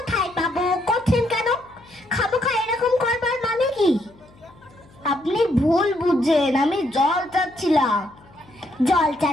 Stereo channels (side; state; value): left; noise; hum, 27 dB below the sound